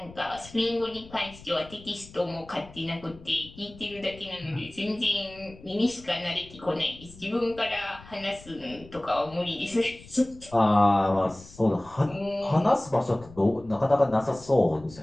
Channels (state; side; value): noise; left; rumble, 20 dB below the sound